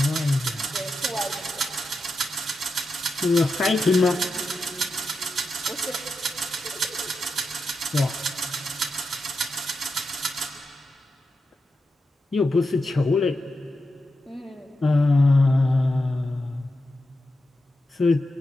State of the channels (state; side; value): normal; both; correlation 0.87